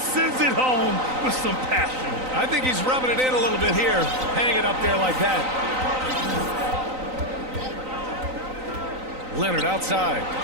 it home with some passion. I think he's rubbing it in a little bit here. Hang it up there like that. Leonard outside.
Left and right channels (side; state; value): left; late; 3.9 ms